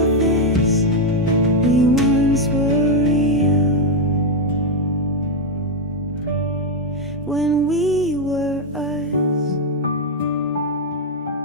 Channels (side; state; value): both; normal; correlation 0.02